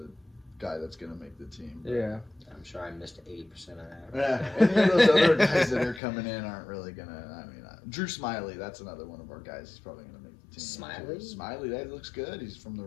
guy that's going to make the team. Yeah. I'm sure I missed 80% of that. Yeah, any of those other guys that are coming in aren't really going to, Drew Smiley, that's another one of our guys who's probably going to make the team. Smiley? Smiley, that looks good. He's from the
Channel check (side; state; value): right; drops out; at 6.0 s